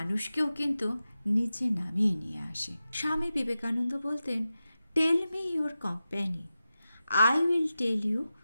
কিন্তু নিচে নামিয়ে নিয়ে আসে। স্বামী বিবেকানন্দ বলতেন, tell me your company, I will tell you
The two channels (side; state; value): both; inverted; correlation -0.93